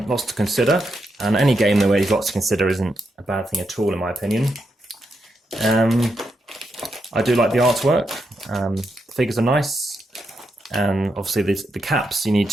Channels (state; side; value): normal; both; correlation 0.83